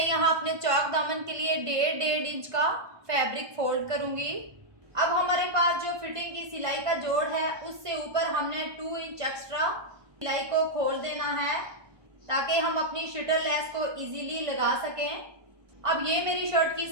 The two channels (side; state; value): left; late; 1.2 ms